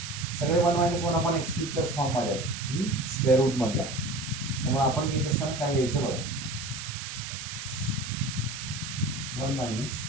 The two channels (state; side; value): noise; right; hiss, 8 dB below the sound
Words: सगळे 1 - 1/x क्यूबच्याच फॉर्म मध्ये आहेत, स्क्वेअर रूट मधला. त्यामुळे आपण घेत असताना काय घ्यायचं बघा, 1 minus